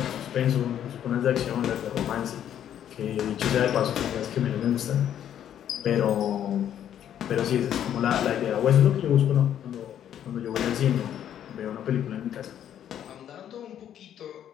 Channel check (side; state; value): right; quieter; 10.2 dB